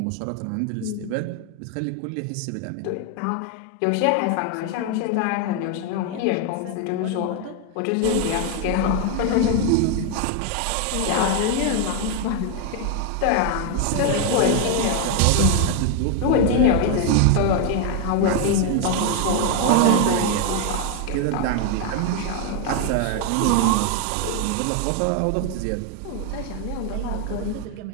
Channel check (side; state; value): both; different; correlation 0.01